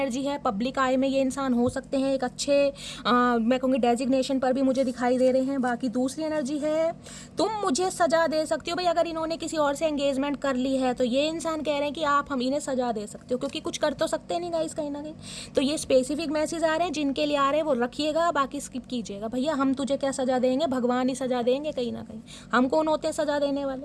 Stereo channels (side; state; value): both; identical; correlation 1.00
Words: है। पब्लिक आई में ये इंसान हो सकते हैं, एक अच्छे मैं कहूँगी डेजिग्नेशन पर भी मुझे दिखाई दे रहे हैं। बाकी दूसरी एनर्जी है तुम मुझे सजा दे सकती हो। भाई अगर इन्होंने किसी और से एंगेजमेंट कर ली है तो ये इंसान कह रहे हैं कि आप हम इन्हें सजा दे सकते हो, क्योंकि कुछ कर तो सकते नहीं गाइस कहीं ना कहीं। तो ये स्पेसिफिक मैसेज आ रहे हैं, जिनके लिए आ रहे हैं वो रखिएगा, बाकी स्किप कीजिएगा। भैया हम तुझे क्या सजा देंगे, भगवान ही सजा देंगे कहीं ना कहीं, हम कौन होते हैं सजा देने